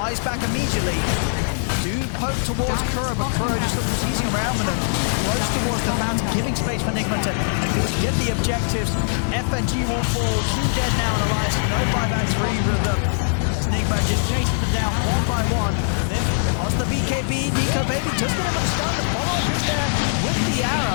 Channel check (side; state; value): right; silent; 64 dB below the other